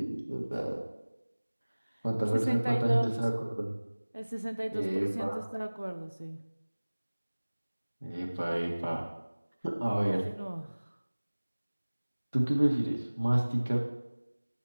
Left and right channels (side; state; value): both; inverted; correlation -1.00